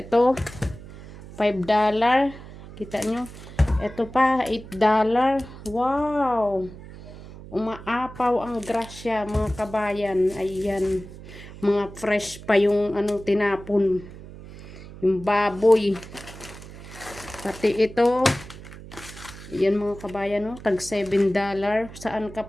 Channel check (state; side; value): noise; right; hum, 16 dB below the sound